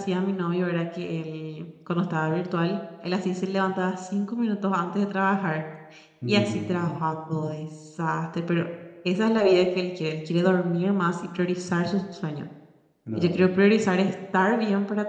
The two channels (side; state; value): both; identical; correlation 1.00